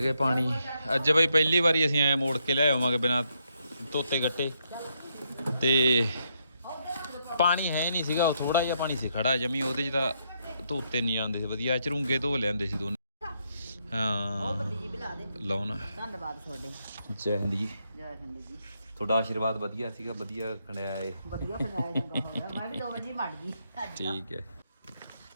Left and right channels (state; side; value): inverted; both; correlation -0.77